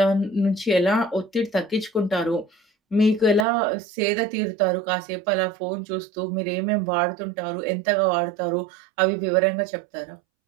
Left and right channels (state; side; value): drops out; left; at 3.5 s